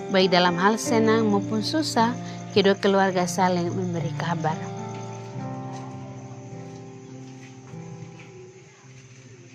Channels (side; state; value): both; identical; correlation 1.00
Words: baik dalam hal senang maupun susah, kedua keluarga saling memberi kabar.